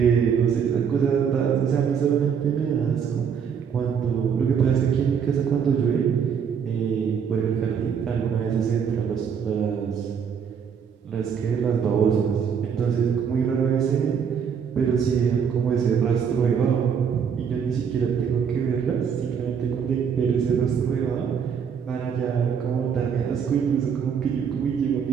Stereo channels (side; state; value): left; quieter; 7.2 dB